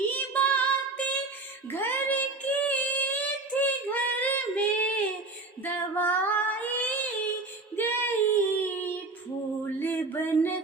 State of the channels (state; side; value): quieter; left; 3.4 dB